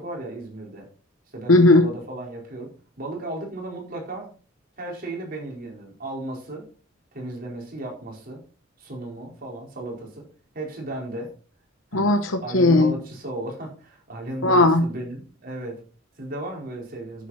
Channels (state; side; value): normal; both; correlation 0.34